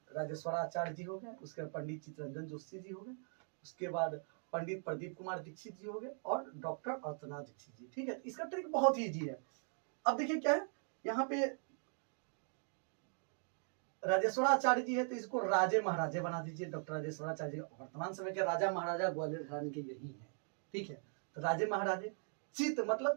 राजेश्वराचार्य जी हो गए, उसके पंडित चित्तरंजन जोशी जी हो गए, उसके बाद पंडित प्रदीप कुमार दीक्षित जी हो गए और डॉक्टर अर्चना दीक्षित जी। ठीक है, इसका ट्रिक बहुत ही इजी है। अब देखिए क्या है, यहाँ पे राजेश्वराचार्य जी है तो इसको राजे महाराजे बना दीजिए। डॉक्टर राजेश्वराचार्य जी वर्तमान समय के राजा महाराजा ग्वालियर घराने के यही है। ठीक है, तो राजे महाराजे, चित्त मतलब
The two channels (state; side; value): silent; left; 51 dB below the other